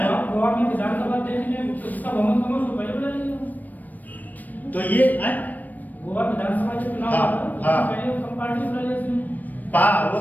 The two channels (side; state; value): right; late; 0.084 ms